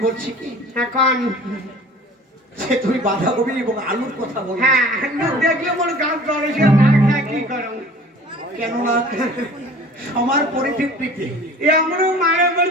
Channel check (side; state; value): both; normal; correlation 0.46